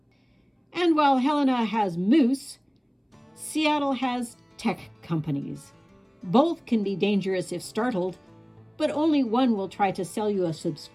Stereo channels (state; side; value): identical; both; correlation 1.00